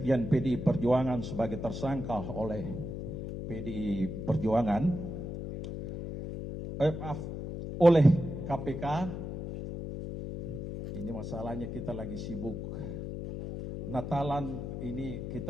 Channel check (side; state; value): left; noise; hum, 6 dB below the sound